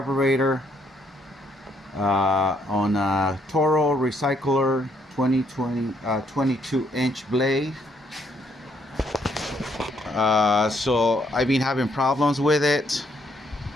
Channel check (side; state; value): both; normal; correlation 0.71